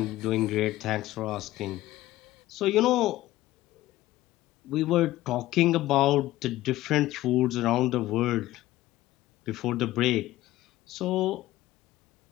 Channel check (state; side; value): quieter; right; 16.1 dB